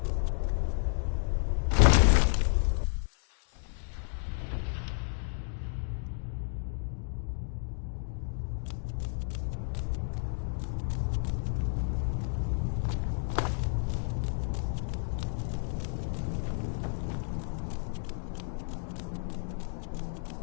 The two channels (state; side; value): silent; right; 57 dB below the other